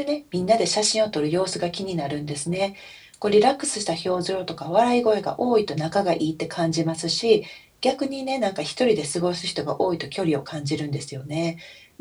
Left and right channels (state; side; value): identical; both; correlation 1.00